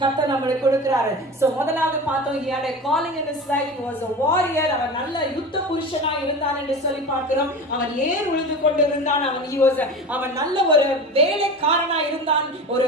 கர்த்தர் நமக்கு கொடுக்கிறார். So முதலாவது பார்த்தோம், he had a calling in his life. He was a warrior. அவன் நல்ல யுத்த புருஷனா இருந்தான் என்று சொல்லி பார்க்கிறோம். அவன் ஏர் உழுது கொண்டு இருந்தான். அவன் நல்ல ஒரு வேலைக்காரனா இருந்தான். ஒரு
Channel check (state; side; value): normal; both; correlation 0.31